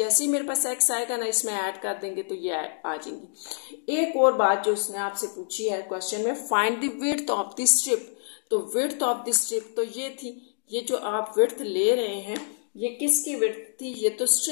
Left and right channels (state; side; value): silent; right; digital silence